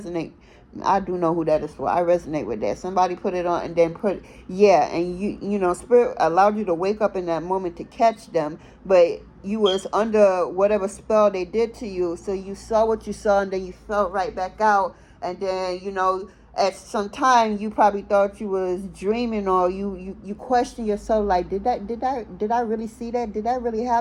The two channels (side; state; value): both; identical; correlation 1.00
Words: I do know who that is for. I resonate with that. Somebody put it on and then and spirit allowed you to wake up in that moment to catch them, but you was under whatever spell they did to you, so you saw what you saw, and then you fell right back out, and then at some time you probably thought you was dreaming, or you question yourself, like, did I really see that? Did that really